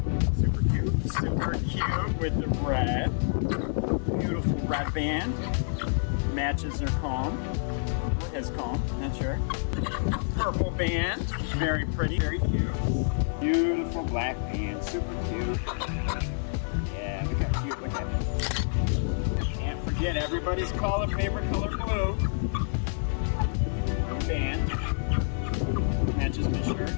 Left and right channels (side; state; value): right; silent; 59 dB below the other